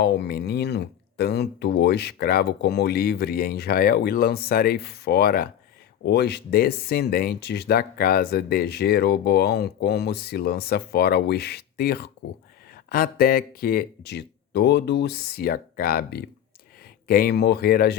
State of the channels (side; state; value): right; quieter; 10.2 dB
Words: menino, tanto o escravo como o livre em Israel, e lançarei fora os descendentes da casa de Jeroboão, como se lança fora o esterco, até que de todo se acabe. Quem morrer a